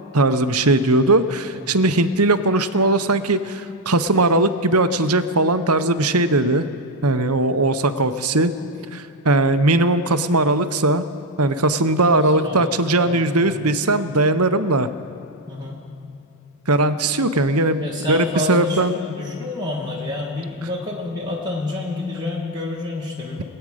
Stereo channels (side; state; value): both; normal; correlation 0.04